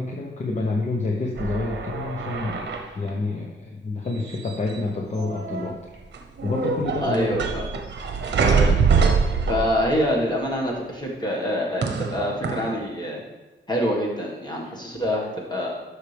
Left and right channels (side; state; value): both; normal; correlation 0.59